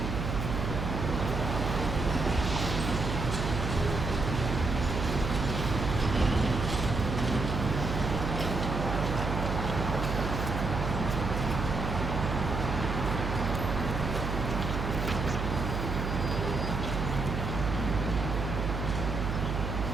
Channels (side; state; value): right; noise; hum, 2 dB below the sound